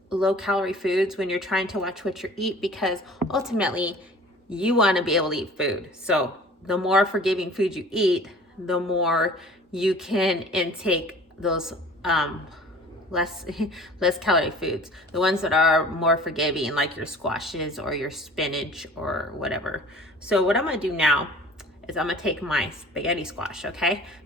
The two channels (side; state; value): both; normal; correlation 0.46